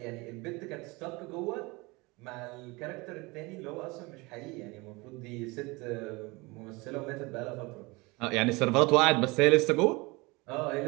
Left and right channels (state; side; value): quieter; left; 24.8 dB